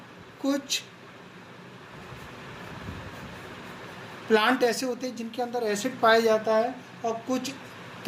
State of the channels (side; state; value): both; identical; correlation 1.00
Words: कुछ प्लांट ऐसे होते हैं जिनके अंदर एसिड पाया जाता है, और कुछ